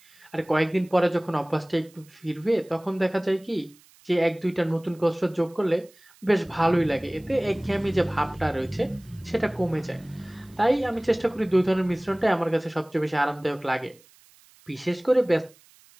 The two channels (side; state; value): right; noise; hiss, 28 dB below the sound